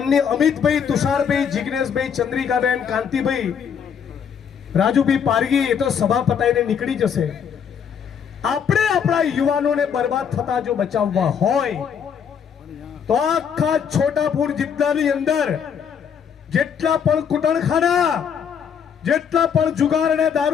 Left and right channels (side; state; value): right; quieter; 7.5 dB